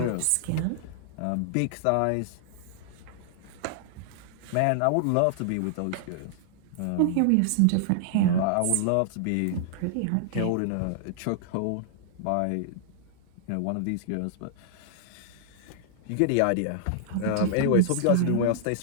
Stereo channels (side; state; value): both; different; correlation -0.01